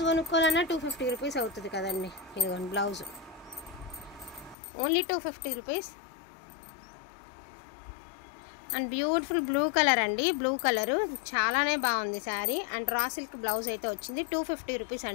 కొనుక్కోవాలన్నా 250 రూపీస్ అవుతుంది కదండి. ఇదిగోండి blouse, only 250 rupees. And beautiful blue colour అండి, బ్లూ కలరు చాలానే బాగుంది sari. And raw silk blouse అయితే వచ్చింది, 250 రూపీస్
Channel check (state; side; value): drops out; right; at 4.5 s